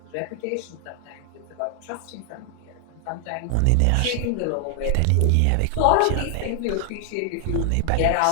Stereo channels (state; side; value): different; both; correlation 0.00